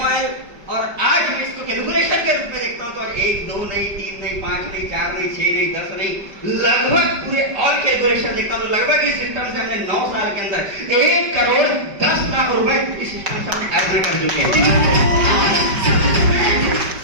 और आज मैं इसको कैलकुलेशन के रूप में देखता हूँ तो आज 1, 2 नहीं, 3 नहीं, 5 नहीं, 4 नहीं, 6 नहीं, 10 नहीं, लगभग पूरे और कैलकुलेशन देखता हूँ तो लगभग इस सिस्टम से हमने 9 साल के अंदर 1,10,00,000 रुपए इस सिस्टम से हमने अर्जन कर चुके हैं।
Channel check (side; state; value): left; late; 5.2 ms